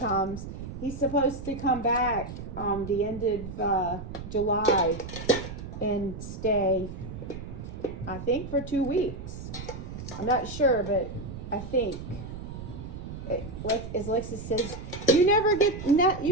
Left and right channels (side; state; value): right; noise; rumble, 10 dB below the sound